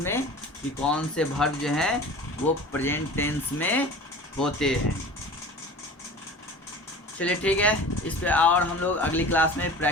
कि कौन से वर्ब जो है वो प्रेजेंट टेंस में होते हैं। चलिए ठीक है, इस पे और हम लोग अगली क्लास में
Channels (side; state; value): both; normal; correlation 0.39